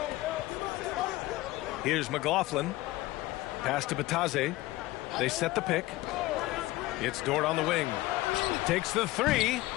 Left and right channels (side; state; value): right; quieter; 18.4 dB